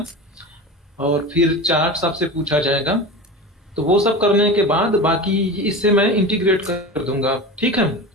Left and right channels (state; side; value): normal; both; correlation 0.29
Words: और फिर चार्ट्स आपसे पूछा जाएगा। तो वो सब करने के बाद बाकी इससे मैं इंटीग्रेट कर दूंगा, ठीक है,